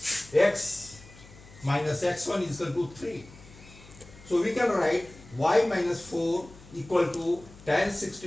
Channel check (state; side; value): noise; left; hum, 21 dB below the sound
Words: X minus x1 is equal to 3. So we can write y minus 4 equal to tan